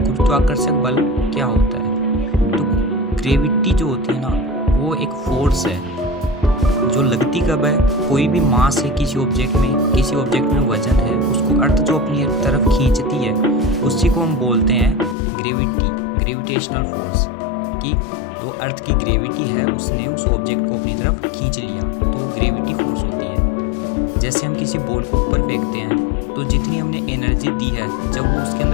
गुरुत्वाकर्षक बल क्या होता है। तो ग्रेविटी जो होती है ना, वो एक फोर्स है जो लगती कब है, कोई भी मास है किसी ऑब्जेक्ट में वजन है, उसको अर्थ जो अपनी तरफ खींचती है उसी को हम बोलते हैं ग्रेविटेशनल फोर्स। कि तो अर्थ की ग्रेविटी है, उसने उस ऑब्जेक्ट को अपनी तरफ खींच लिया, तो ग्रेविटी फोर्स होती है। जैसे हम किसी बॉल को ऊपर फेंकते हैं तो जितनी हमने एनर्जी दी है, जब वो उसके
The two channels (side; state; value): right; drops out; at 15.2 s